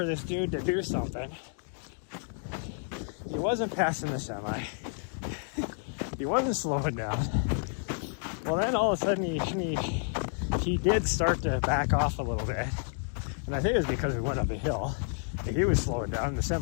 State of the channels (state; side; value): silent; right; 58 dB below the other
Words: this dude to do something. He wasn't passing the semi. He wasn't slowing down. Well, then all of a sudden he did start to back off a little bit. And I think it was because we went up a hill. He was slowing down, the